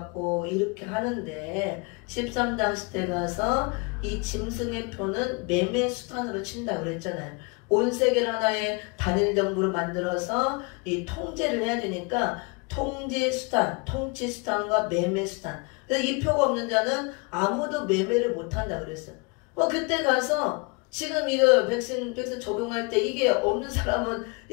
이렇게 하는데 13장 시대 가서 이 짐승의 표는 매매 수단으로 친다고 그랬잖아요. 온 세계를 하나의 단일 정부로 만들어서 이 통제를 해야 되니까 통제 수단, 통치 수단과 매매 수단. 그래서 이 표가 없는 자는 아무도 매매를 못 한다 그랬어요. 그때 가서 지금 이거 백신 적용할 때 이게 없는 사람은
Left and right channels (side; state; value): right; quieter; 30.3 dB